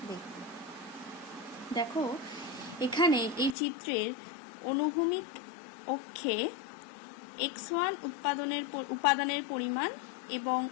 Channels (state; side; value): drops out; right; at 3.6 s